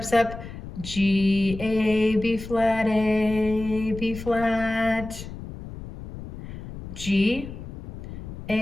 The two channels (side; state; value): left; noise; rumble, 11 dB below the sound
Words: up. G, A, B flat, A, B flat. G,